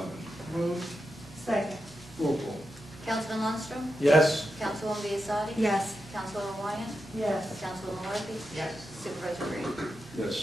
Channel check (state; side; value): normal; both; correlation 0.88